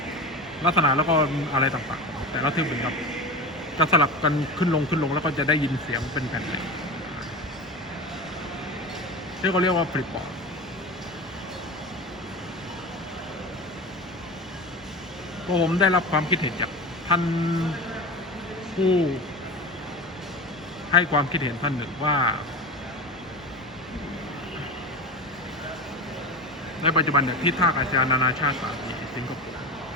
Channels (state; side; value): normal; both; correlation 0.27